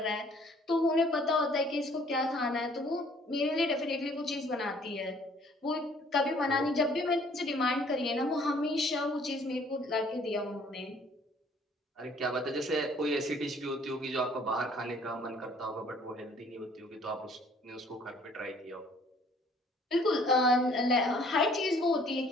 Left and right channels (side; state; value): both; normal; correlation 0.58